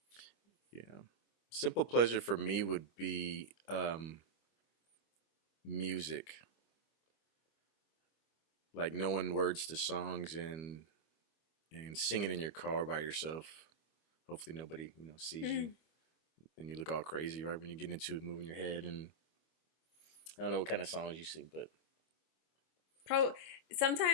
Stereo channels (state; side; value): late; right; 25 ms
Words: Yeah. Simple pleasure for me would be music. Like knowing words to songs and singing in your car by yourself. Hopefully nobody, sees you Mm. and you look all crazy right when you get into it, moving your head, and I don't know what kind of songs you sing, but